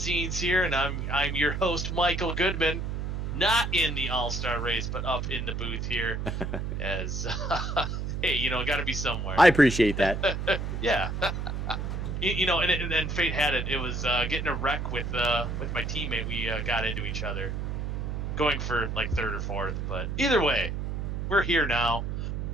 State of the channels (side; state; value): right; noise; hum, 3 dB below the sound